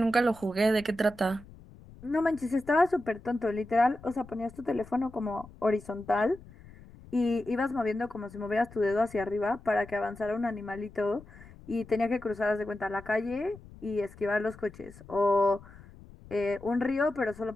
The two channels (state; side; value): noise; left; rumble, 20 dB below the sound